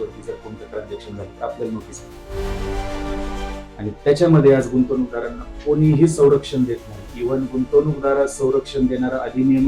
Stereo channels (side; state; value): both; identical; correlation 1.00